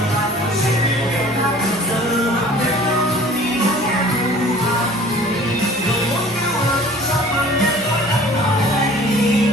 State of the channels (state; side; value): normal; both; correlation 0.47